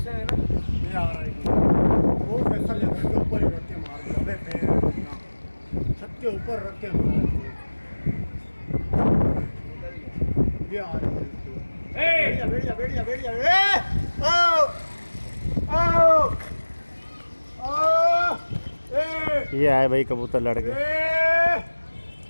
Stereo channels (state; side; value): inverted; both; correlation -1.00